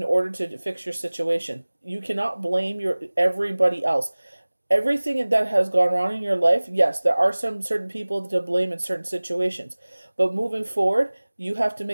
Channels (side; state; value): both; inverted; correlation -1.00